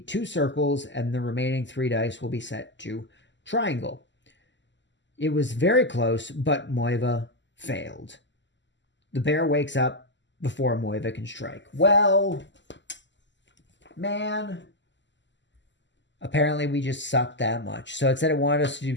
2 circles, and the remaining 3 dice will be set to triangle. It was very close, but Moiva failed. The bear wakes up before Moiva can strike. Well, man. Apparently, we just sucked that much. So it said it wanted us to do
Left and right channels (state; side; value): late; right; 0.53 ms